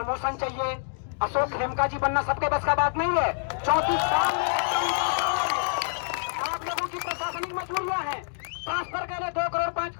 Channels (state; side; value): silent; right; digital silence